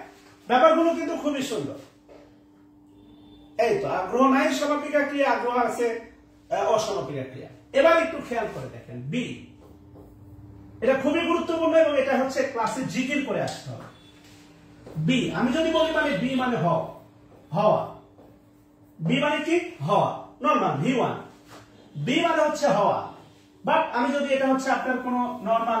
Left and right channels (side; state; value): both; identical; correlation 1.00